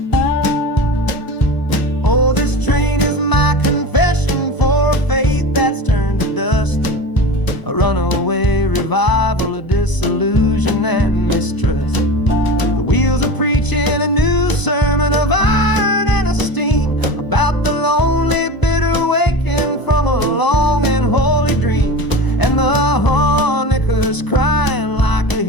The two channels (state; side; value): late; right; 1.0 ms